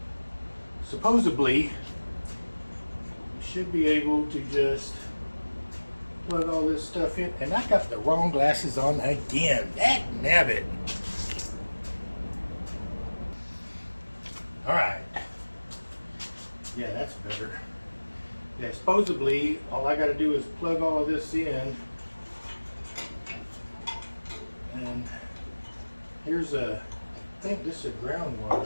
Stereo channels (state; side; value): inverted; both; correlation -1.00